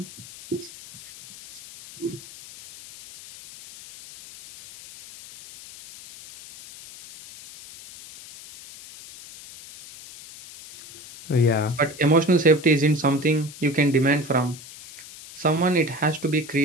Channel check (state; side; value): noise; left; hiss, 17 dB below the sound